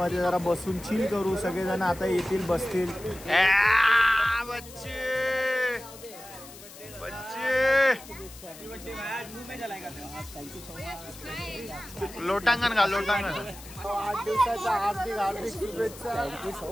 जरा बसून चिल करू. सगळेजण आता येतील, बसतील. लोटांगण घाल, लोटांगण. 8 दिवसाच्या हार्दिक शुभेच्छा. Thank you so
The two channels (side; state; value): left; noise; hiss, 17 dB below the sound